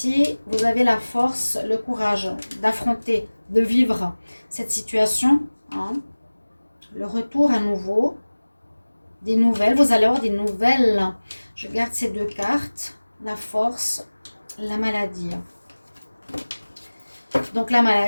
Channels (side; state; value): both; inverted; correlation -1.00